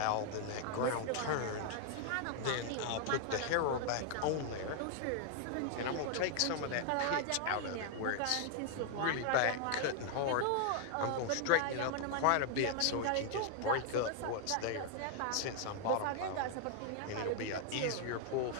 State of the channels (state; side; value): different; both; correlation 0.00